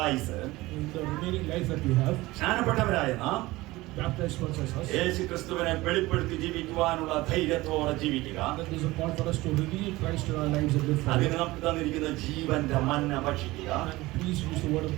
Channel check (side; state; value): left; quieter; 19.5 dB